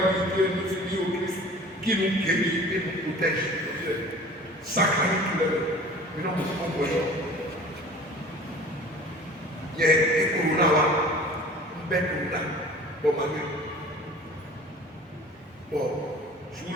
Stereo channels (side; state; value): both; normal; correlation 0.44